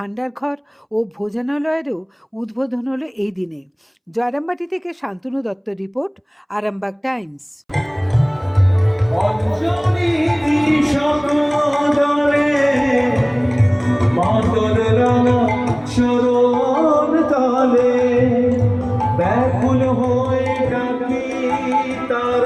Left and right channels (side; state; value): both; identical; correlation 1.00